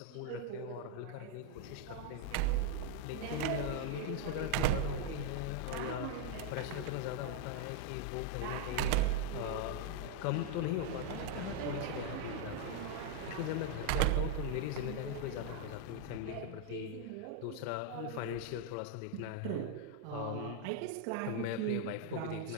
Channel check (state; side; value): different; both; correlation 0.00